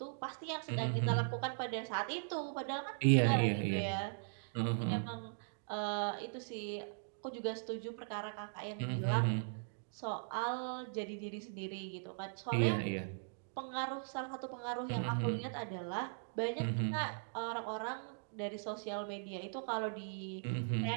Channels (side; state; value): left; silent; digital silence